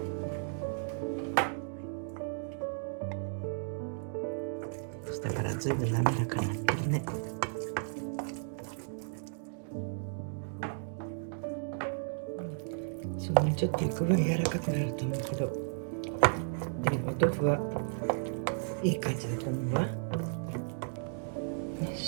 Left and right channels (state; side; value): silent; left; digital silence